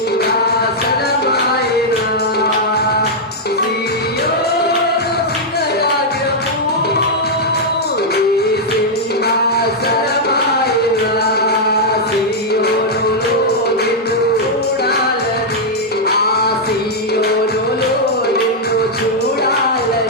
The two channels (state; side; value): normal; both; correlation -0.04